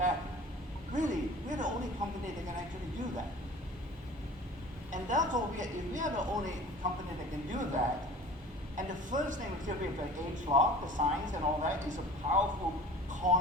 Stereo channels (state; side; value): normal; both; correlation 0.43